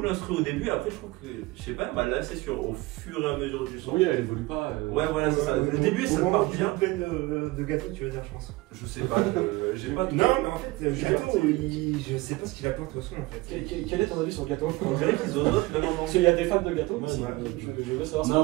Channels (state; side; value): quieter; left; 21.2 dB